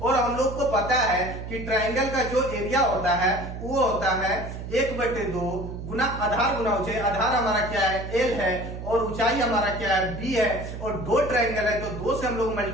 हम लोग को पता है कि ट्राइंगल का जो एरिया होता है वो होता है 1/2 गुना आधार गुना ऊंचाई। आधार हमारा क्या है? एल है, और ऊंचाई हमारा क्या है? बी है। और दो ट्राइंगल है तो 2 से हम लोग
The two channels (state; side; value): noise; right; hum, 8 dB below the sound